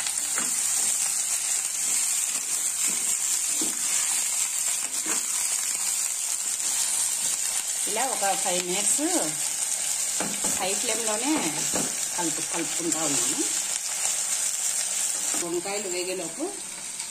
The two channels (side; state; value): both; identical; correlation 1.00